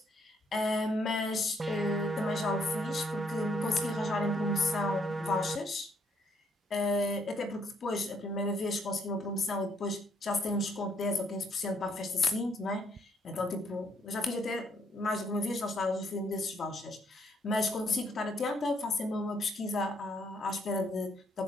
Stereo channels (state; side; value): normal; both; correlation 0.70